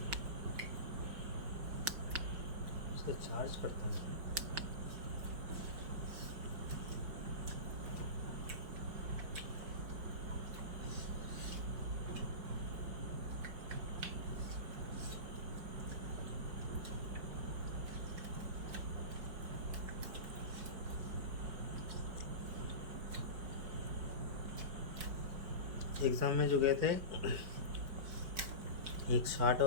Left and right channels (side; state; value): left; late; 4.9 ms